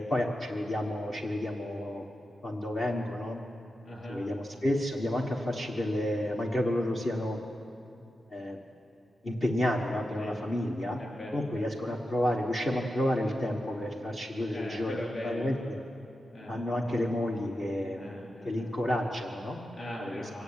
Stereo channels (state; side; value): normal; both; correlation 0.90